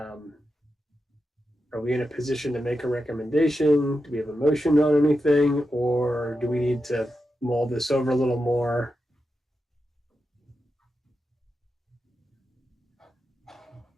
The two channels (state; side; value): normal; both; correlation 0.89